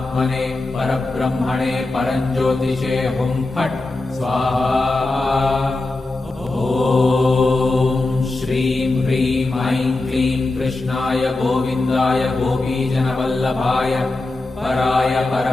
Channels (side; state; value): right; quieter; 3.1 dB